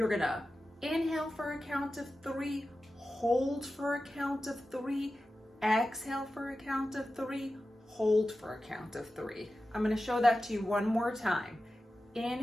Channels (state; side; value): normal; both; correlation 0.93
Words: going to inhale for a count of 3, hold for a count of 3, exhale for a count of 3, hold for a count of 3. I'm going to show that to you one more time.